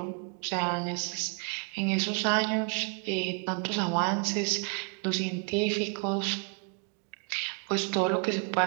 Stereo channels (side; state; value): left; quieter; 35.9 dB